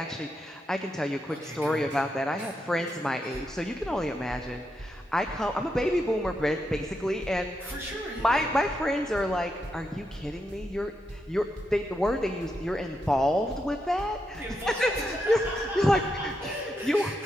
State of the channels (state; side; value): normal; both; correlation 0.83